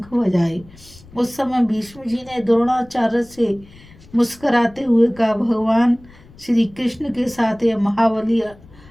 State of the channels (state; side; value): noise; left; rumble, 24 dB below the sound